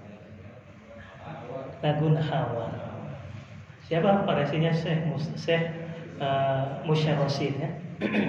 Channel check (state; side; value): identical; both; correlation 1.00